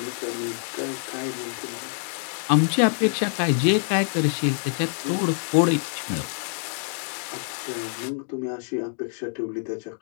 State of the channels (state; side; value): silent; right; 61 dB below the other